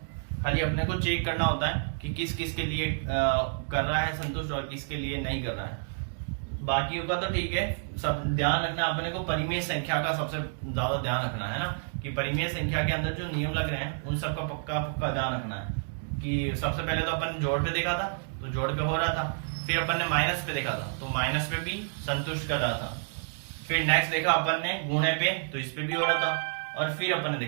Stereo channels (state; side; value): silent; left; digital silence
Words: खाली अपने को चेक करना होता है कि किस किस के लिए कर रहा है संतुष्ट और किसके लिए नहीं कर रहा है। बाकियों का तो ठीक है, सब ध्यान रखना अपने को परिमेय संख्या का सबसे ज्यादा ध्यान रखना है ना, कि परिमेय संख्या के अंदर जो नियम लग रहे हैं उन सब का पक्का ध्यान रखना है। कि सबसे पहले तो अपन जोड़ पे देखा था, तो जोड़ पे हो रहा था, फिर अपन ने माइनस पे देखा था तो माइनस पे भी संतुष्ट कर रहा था। फिर नेक्स्ट देखा अपन ने गुणे पे तो इस पे भी हो रहा था, और फिर अपन ने